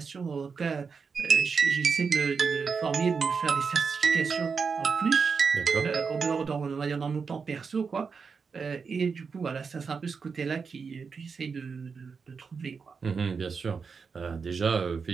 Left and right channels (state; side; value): quieter; left; 5.5 dB